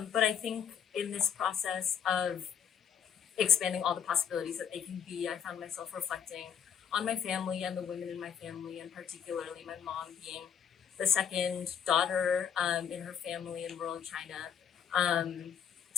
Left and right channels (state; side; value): quieter; right; 7.9 dB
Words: But I think in this process of expanding all the possibilities that they can be, I found myself reflecting on my family and the women in my family, and particularly my mom being the second daughter in her family in rural China.